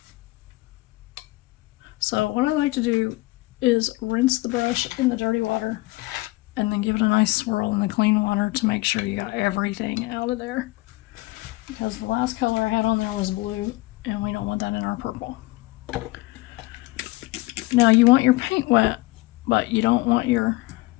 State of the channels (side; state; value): right; quieter; 21.0 dB